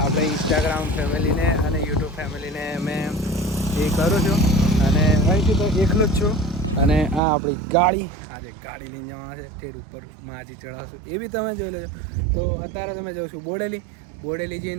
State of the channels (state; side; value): drops out; left; at 7.2 s